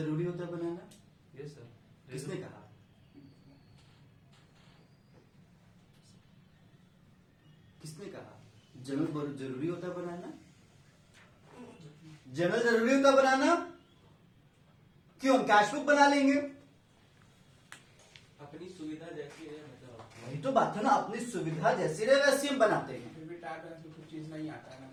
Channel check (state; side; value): identical; both; correlation 1.00